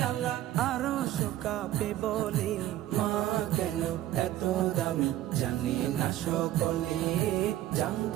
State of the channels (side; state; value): left; quieter; 13.7 dB